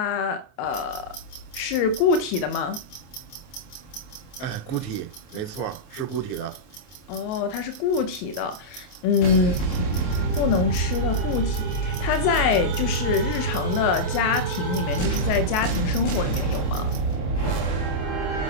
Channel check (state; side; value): late; right; 28 ms